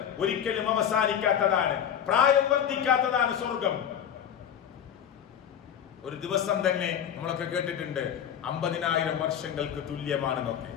ഒരിക്കലും അവസാനിക്കാത്തതാണ്, പ്രായം വർദ്ധിക്കാത്തതാണ് സ്വർഗം. ഒരു ദിവസം തന്നെ നമ്മളൊക്കെ കേട്ടിട്ടുണ്ട് 50,000 വർഷങ്ങൾക്ക് തുല്യമാണെന്നൊക്കെ.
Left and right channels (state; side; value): quieter; right; 9.0 dB